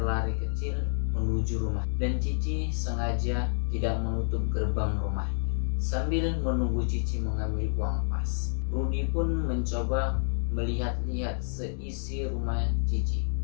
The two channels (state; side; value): silent; right; digital silence